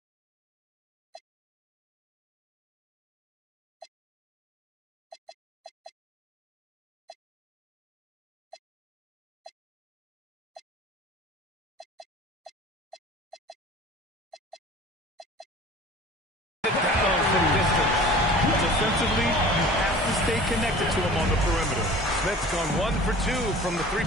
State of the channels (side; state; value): both; normal; correlation 0.43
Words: Defensively, you have to stay connected to him on the perimeter. Smith's gone 1 for 2 from the